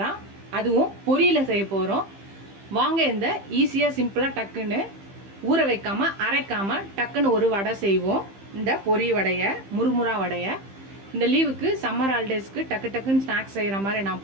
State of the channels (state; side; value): late; left; 15 ms